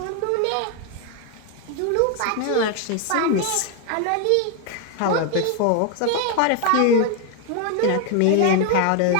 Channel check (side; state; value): both; different; correlation 0.01